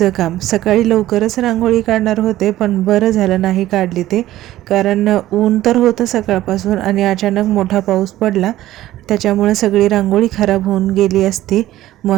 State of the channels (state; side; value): quieter; left; 14.7 dB